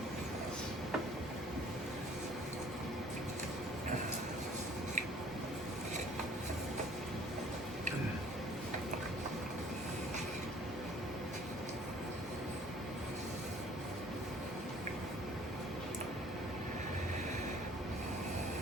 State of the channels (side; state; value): both; normal; correlation 0.54